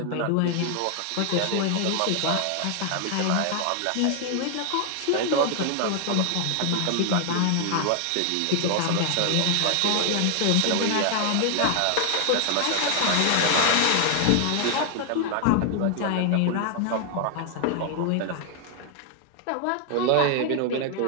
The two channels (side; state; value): both; different; correlation 0.00